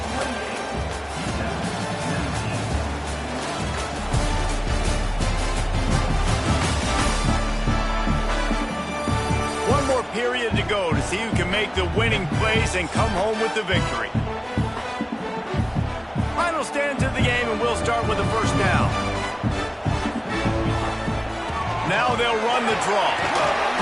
One more period to go to see who can make the winning plays and come home with the victory. Final stand to the game, and we'll start with the 1st down. Now they'll run the draw.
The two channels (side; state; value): both; identical; correlation 1.00